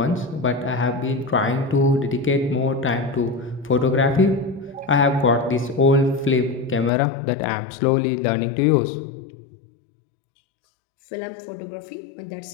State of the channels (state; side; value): drops out; right; at 6.9 s